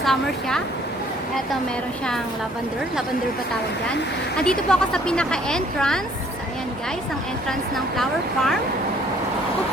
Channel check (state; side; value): normal; both; correlation 0.60